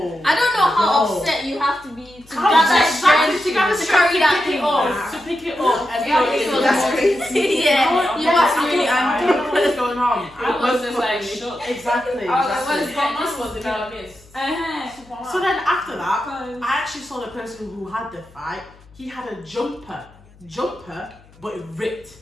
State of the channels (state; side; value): noise; left; hum, 26 dB below the sound